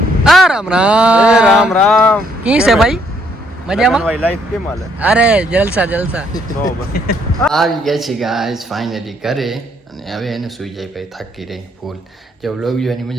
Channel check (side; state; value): both; normal; correlation 0.69